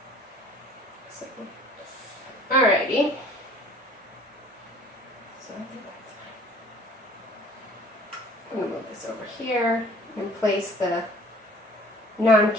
So, alrighty. So I think that's fine. I'm gonna move this over here and place the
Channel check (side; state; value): both; normal; correlation 0.51